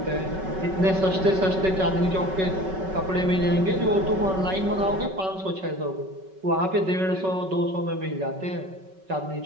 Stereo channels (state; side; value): late; left; 5.3 ms